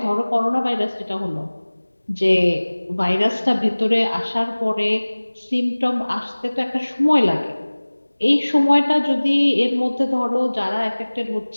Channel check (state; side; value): inverted; both; correlation -1.00